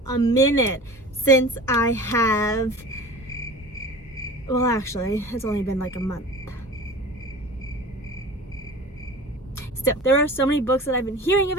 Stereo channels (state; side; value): normal; both; correlation 0.37